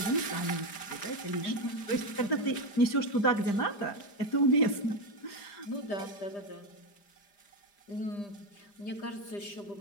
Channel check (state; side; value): late; right; 5.0 ms